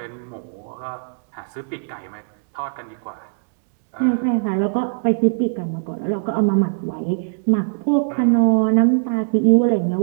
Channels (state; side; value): silent; left; digital silence